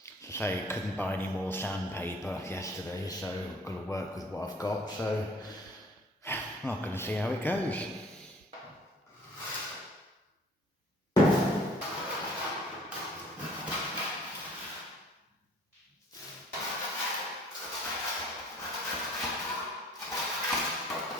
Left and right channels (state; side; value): normal; both; correlation 0.54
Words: I say, couldn't buy any more sandpaper yesterday, so I've got to work with what I've got, so I'm not going to see how it goes.